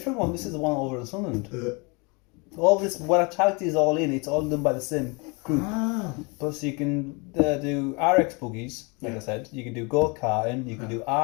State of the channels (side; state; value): right; quieter; 30.2 dB